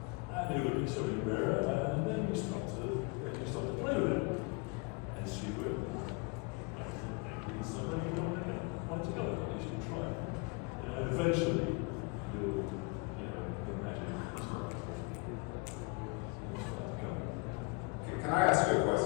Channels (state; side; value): quieter; right; 28.7 dB